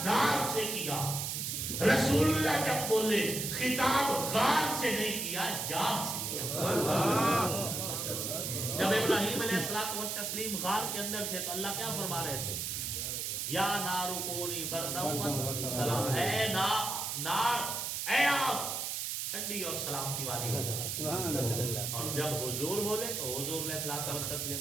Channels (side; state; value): right; noise; hiss, 2 dB below the sound